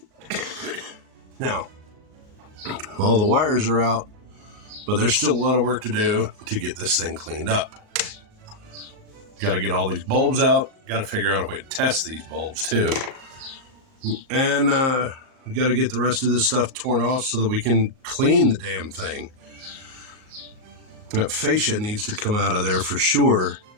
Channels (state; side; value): late; left; 38 ms